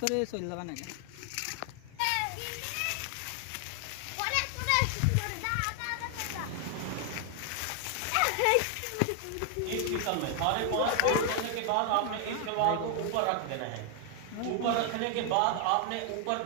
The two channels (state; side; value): different; both; correlation 0.00